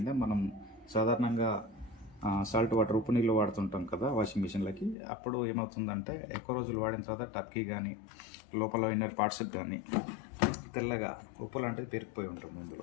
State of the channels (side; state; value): right; drops out; at 5.0 s